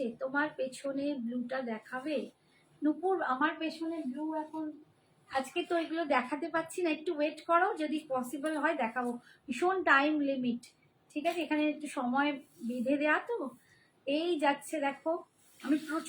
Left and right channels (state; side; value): identical; both; correlation 1.00